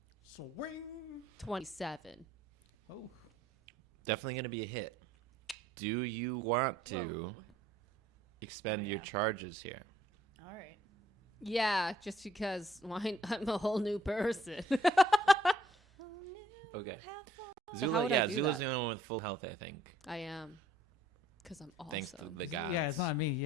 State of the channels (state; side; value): normal; both; correlation 0.61